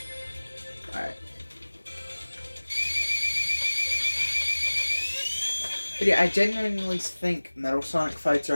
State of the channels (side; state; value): both; inverted; correlation -1.00